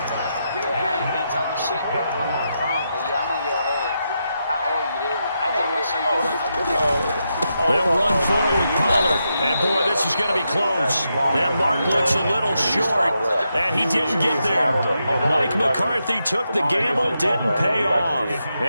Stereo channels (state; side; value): inverted; both; correlation -0.85